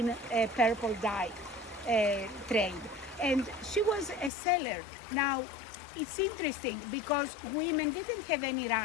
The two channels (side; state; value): right; drops out; at 4.3 s